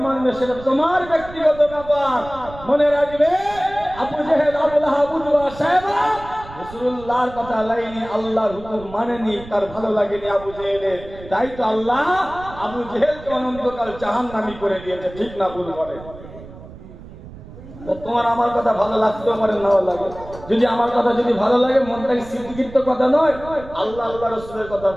মানবে সেটা তোমার ব্যক্তিগত ব্যাপার। মনে রাখবে, আবু জেহেল, আবু লাহাব, উতবা, সায়বা রাসূলুল্লাহর কথা লাইনি, আল্লাহর হুকুম মানেনি, তার ভালো লাগেনি আবু জেহেলের। তাই তো আল্লাহ আবু জেহেলকে অনন্তকাল জাহান্নামী করে দিয়েছে। ঠিক না ভুল বলে? তোমার আমার কথা ভালো লাগতেও পারে, নাও লাগে। যদি আমার কথা যদি ভালো লাগে, মনটাকে স্বীকৃত কথা নয়, আল্লাহ আল্লাহ রাসূলের কথা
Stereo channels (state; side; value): noise; right; rumble, 16 dB below the sound